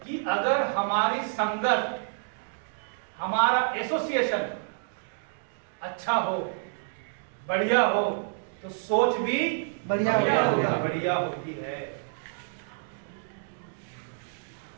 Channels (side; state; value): left; silent; digital silence